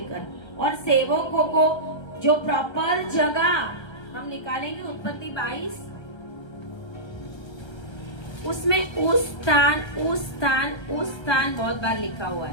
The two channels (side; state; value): right; late; 1.3 ms